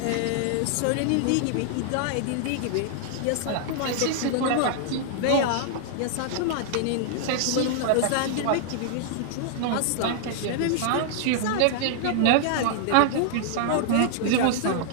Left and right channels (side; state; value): both; different; correlation -0.01